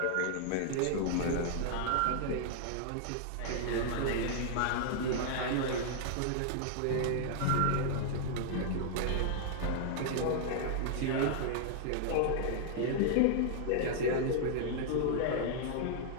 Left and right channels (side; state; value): both; different; correlation -0.01